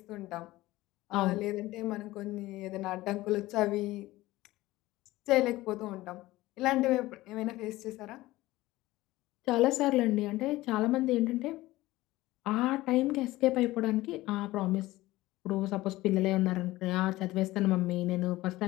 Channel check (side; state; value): right; quieter; 17.9 dB